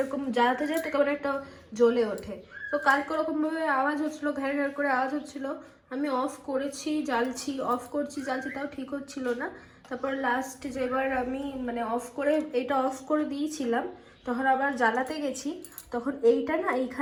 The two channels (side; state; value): both; identical; correlation 1.00